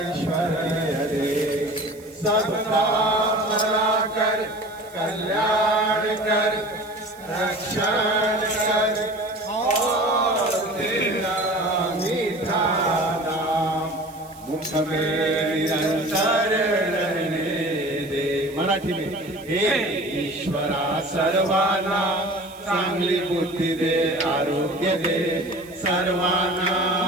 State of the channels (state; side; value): noise; right; hiss, 23 dB below the sound